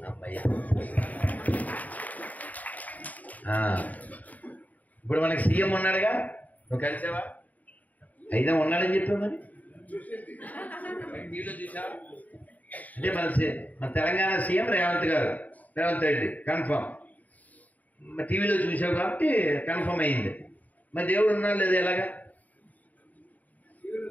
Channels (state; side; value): late; right; 0.075 ms